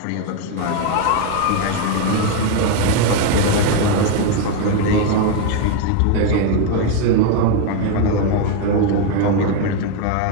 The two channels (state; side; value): different; both; correlation 0.01